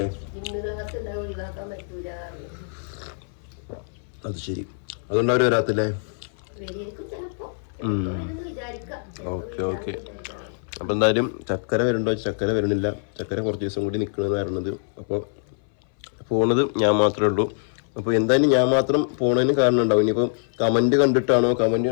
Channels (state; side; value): silent; right; 59 dB below the other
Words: അത് ശരി. അതുകൊണ്ട് അവർ വരാത്തില്ലേ? Okay okay. അപ്പം എന്തായാലും ചക്കര വരുന്നുണ്ടോ? ചക്കര വരുന്നില്ല. ചക്കര കുറച്ച് ദിവസം കൂടി നിൽക്കണമെന്ന് പറയുന്നത്. അപ്പോൾ പോണത് ഞാൻ മാത്രമേ ഉള്ളൂ. അപ്പോൾ എന്തായാലും ഞാൻ മാത്രം പോണതിന് കാരണം ഉണ്ടാവും. ഇനിയിപ്പോൾ കമൻറ്റ് കണ്ടിട്ടാണോ, കമൻറ്റ്